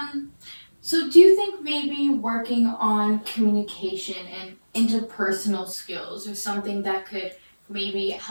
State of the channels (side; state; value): both; inverted; correlation -1.00